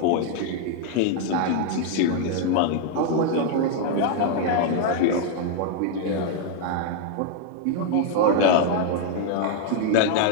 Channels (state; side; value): different; both; correlation 0.00